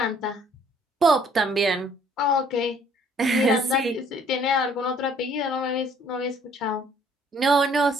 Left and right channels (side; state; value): both; normal; correlation 0.59